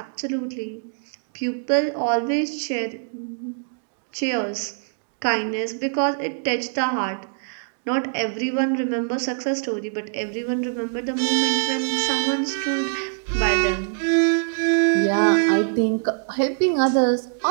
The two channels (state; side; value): silent; left; digital silence